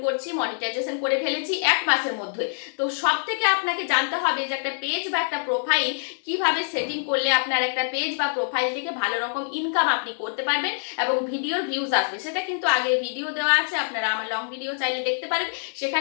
করছি, মনিটাইজেশন করে ফেলেছি 1 মাসের মধ্যে। তো সব থেকে আপনাকে জানতে হবে যে একটা পেজ বা একটা প্রোফাইল কিভাবে সেটিং করলে আপনার একটা পেজ বা প্রোফাইল থেকে ভালো রকম ইনকাম আপনি করতে পারবেন এবং ভিডিওর ভিউজ আসবে। সেটা কিন্তু আগে ভিডিও দেওয়া আছে, আপনারা আমার লং ভিডিও চাইলে দেখতে পারেন,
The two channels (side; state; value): right; silent; digital silence